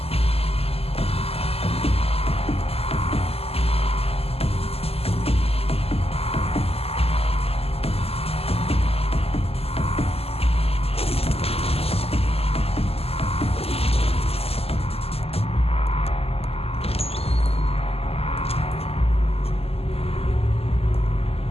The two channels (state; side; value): late; right; 0.29 ms